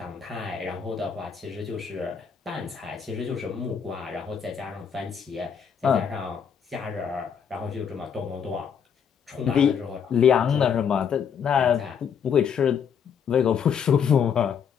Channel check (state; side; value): quieter; right; 7.4 dB